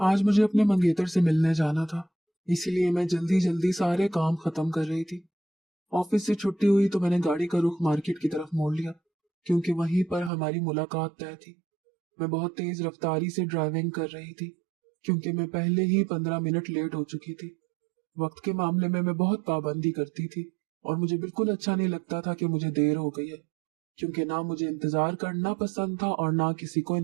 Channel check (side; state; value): left; drops out; at 10.3 s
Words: मुझे अपने मंगेतर से मिलने जाना था, इसीलिए मैं जल्दी जल्दी सारे काम खत्म कर रही थी। ऑफिस से छुट्टी हुई तो मैंने गाड़ी का रुख मार्केट की तरफ मोड़ लिया, क्योंकि वहीं पर हमारी मुलाकात तय थी। मैं बहुत तेज रफ्तारी से ड्राइविंग कर रही थी, क्योंकि मैं पहले ही 15 मिनट लेट हो चुकी थी। वक्त के मामले में मैं बहुत पाबंदी करती थी और मुझे बिल्कुल अच्छा नहीं लगता था कि मुझे देर हो गई है, क्योंकि ना मुझे इंतजार करना पसंद था और ना किसी को